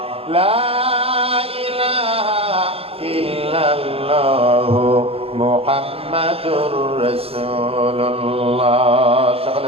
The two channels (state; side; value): late; left; 0.28 ms